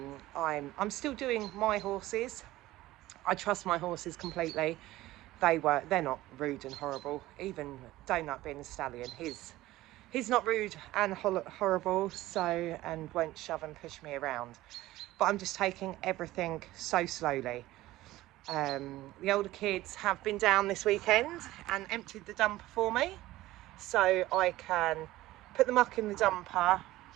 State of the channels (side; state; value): left; quieter; 16.7 dB